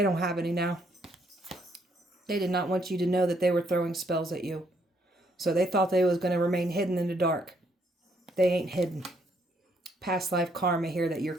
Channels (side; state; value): both; normal; correlation 0.71